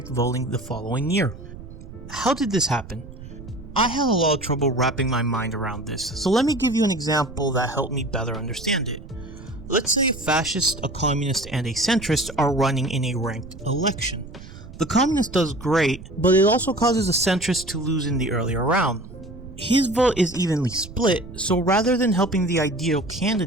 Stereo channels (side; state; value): right; noise; rumble, 15 dB below the sound